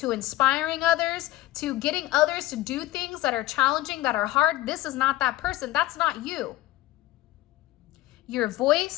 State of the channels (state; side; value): quieter; right; 16.4 dB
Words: inspiring others, to getting others to do things that are challenging, that are hard, this is not that person. That's not you. Your